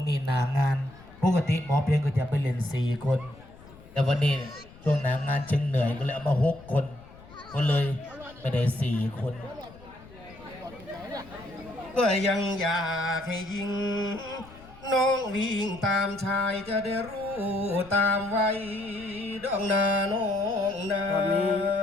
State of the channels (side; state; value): left; noise; rumble, 21 dB below the sound